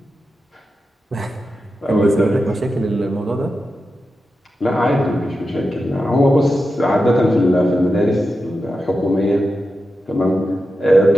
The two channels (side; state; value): both; normal; correlation 0.90